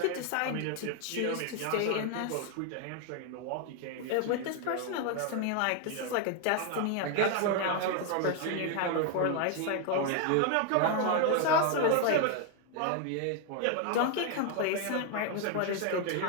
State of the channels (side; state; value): both; different; correlation 0.00